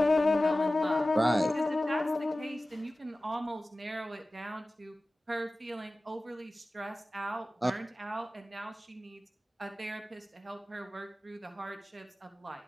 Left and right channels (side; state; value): both; normal; correlation 0.96